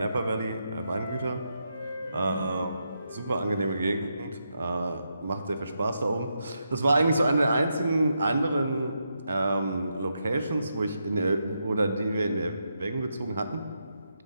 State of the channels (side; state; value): both; inverted; correlation -0.83